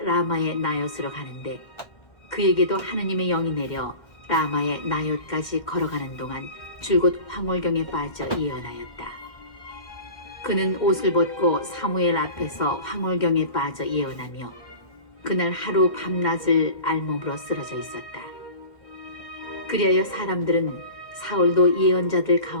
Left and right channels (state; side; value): late; right; 1.6 ms